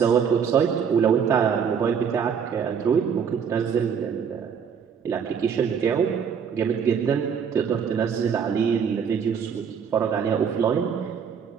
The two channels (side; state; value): left; quieter; 7.1 dB